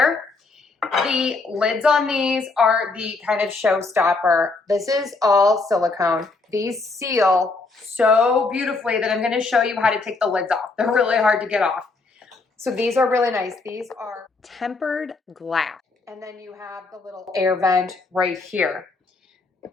The lids on these are the kind of showstopper. This is all silicone. These seal so beautifully that I'm going to show you how to take the lids off. They're really hard to get off. So these are really nice. These are tempered glass. And then you have the little air vent right here.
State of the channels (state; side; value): quieter; right; 3.8 dB